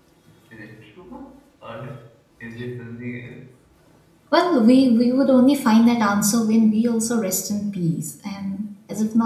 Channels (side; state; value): both; identical; correlation 1.00